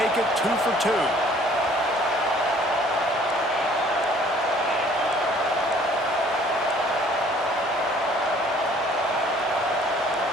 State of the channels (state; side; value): normal; both; correlation 0.56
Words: it 2 for 2.